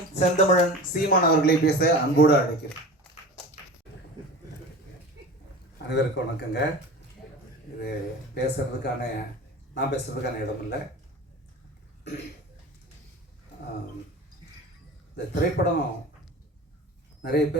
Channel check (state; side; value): normal; both; correlation 0.34